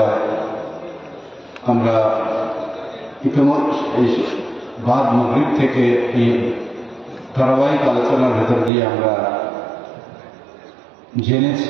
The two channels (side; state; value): left; drops out; at 8.7 s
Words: আমরা ইতিমধ্যে বাদ মাগরিব থেকে এই ধারাবাহিক আলোচনার ভেতর দিয়ে আমরা